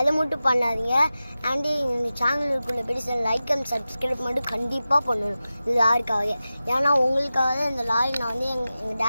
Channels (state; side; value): inverted; both; correlation -0.94